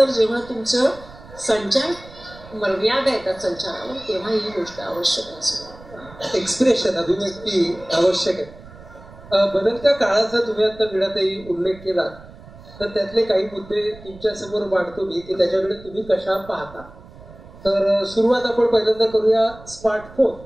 जेव्हा तुमचं संचार मर्यादा येतात संचारावर, तेव्हा ही गोष्ट आवश्यक असेल. एक्सप्रेशन, अभिव्यक्ती आवश्यक आहे. बदलत्या काळाचा तुम्ही आता वीणाताई उल्लेख केला, तर त्यातले काही मुद्दे तुमच्या समोर मांडतो मी की त्याच्याकडे तुम्ही कशा पाहता. तर सुरुवात आपण पहिल्यांदा करूया स्मार्टफोन.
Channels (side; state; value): right; noise; rumble, 20 dB below the sound